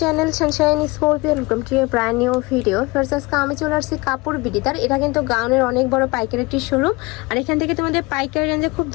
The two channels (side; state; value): right; quieter; 24.4 dB